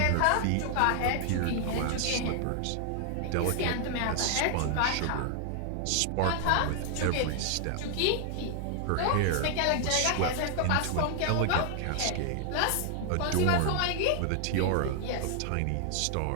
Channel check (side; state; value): both; different; correlation 0.00